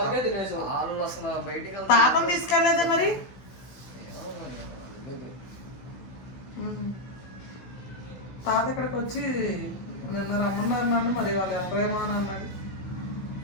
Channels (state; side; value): late; right; 16 ms